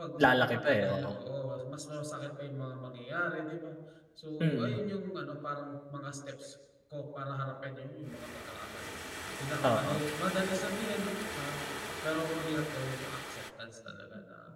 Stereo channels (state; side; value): identical; both; correlation 1.00